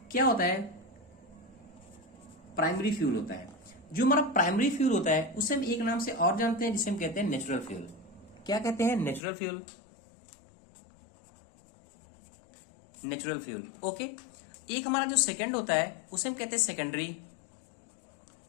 क्या होता है? प्राइमरी फ्यूल होता है। जो हमारा प्राइमरी फ्यूल होता है उसे हम एक नाम से और जानते हैं, जिसे हम कहते हैं नेचुरल फ्यूल। क्या कहते हैं? Natural fuel. Natural fuel, okay. एक हमारा जो सेकंड होता है उसे हम कहते हैं सेकेंडरी।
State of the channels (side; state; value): right; drops out; at 9.2 s